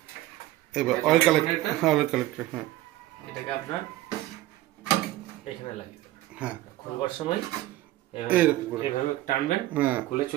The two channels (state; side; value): quieter; left; 16.0 dB